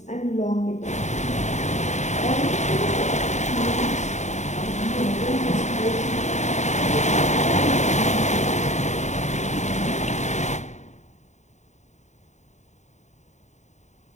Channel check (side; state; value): right; late; 0.34 ms